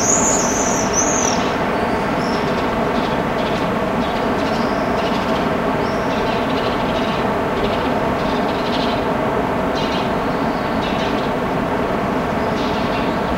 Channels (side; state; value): both; identical; correlation 1.00